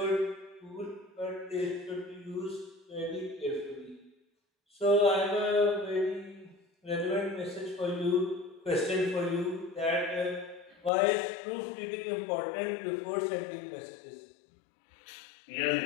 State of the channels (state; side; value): drops out; right; at 10.9 s